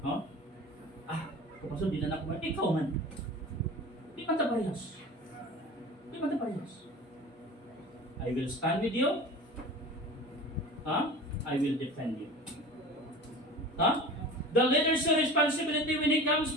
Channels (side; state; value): both; normal; correlation 0.37